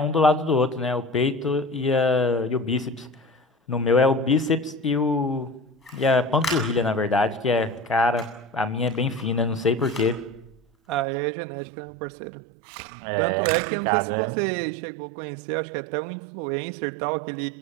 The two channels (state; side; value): drops out; left; at 11.1 s